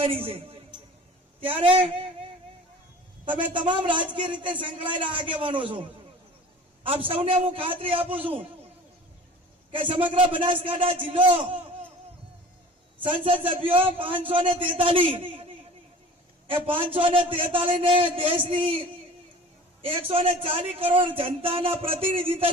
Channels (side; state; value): both; normal; correlation 0.43